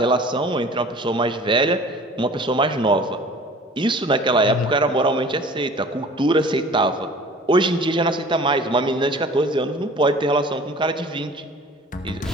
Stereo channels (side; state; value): both; normal; correlation 0.46